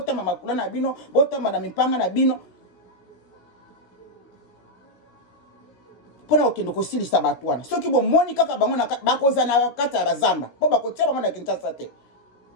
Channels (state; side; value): late; right; 17 ms